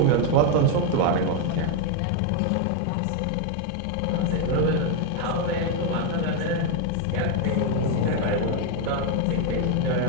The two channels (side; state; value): both; different; correlation 0.01